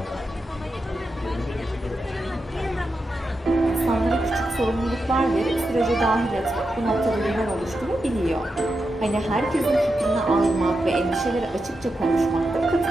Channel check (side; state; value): both; normal; correlation 0.88